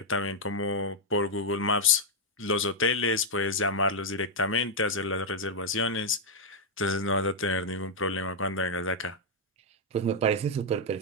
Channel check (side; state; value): both; normal; correlation -0.02